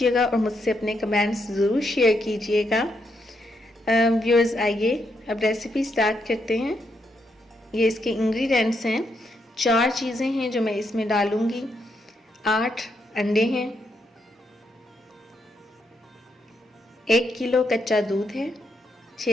और मुझसे अपने कमेंट्स ज़रूर शेयर कीजिएगा। व्यूअर्स, आइए अब रेसिपी स्टार्ट करते हैं। ये इसके इंग्रेडिएंट्स हैं। 4 चीज़ें हैं जो मैं इसमें डालूँगी। 8 अंडे हैं, 1 किलो कच्चा दूध है,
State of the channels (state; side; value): normal; both; correlation 0.79